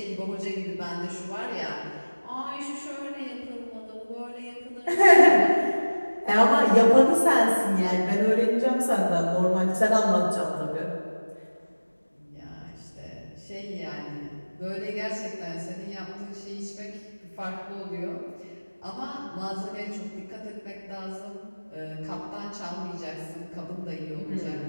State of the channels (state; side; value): inverted; both; correlation -1.00